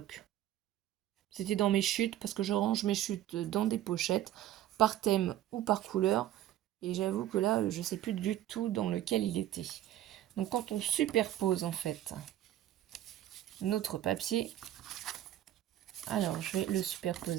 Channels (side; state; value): left; quieter; 12.9 dB